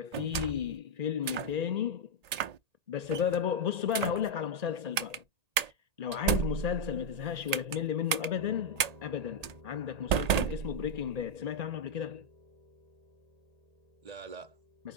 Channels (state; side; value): late; left; 1.8 ms